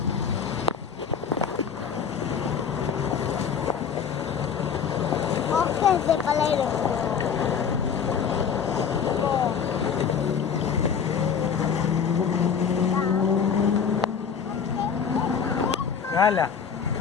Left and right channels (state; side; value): quieter; right; 6.9 dB